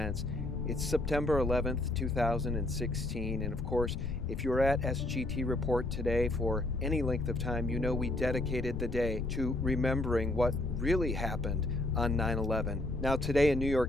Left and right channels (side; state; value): left; noise; rumble, 5 dB below the sound